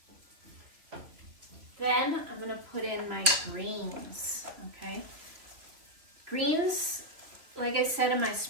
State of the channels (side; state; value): left; late; 3.2 ms